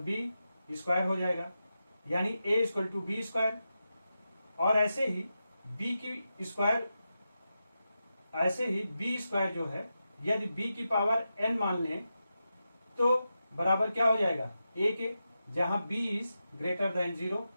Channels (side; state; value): both; inverted; correlation -0.89